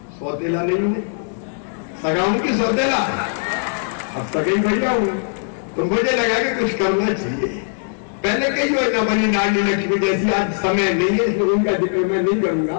सौतेला नहीं हूं, सगा हूं कि सौतेला? अब सगई भैया हूं, तो मुझे लगा कि कुछ करना चाहिए। पहले कई योजना बनी, लाडली लक्ष्मी जैसी, आज समय नहीं है इसलिए उनका जिक्र मैं नहीं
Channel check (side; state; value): right; silent; digital silence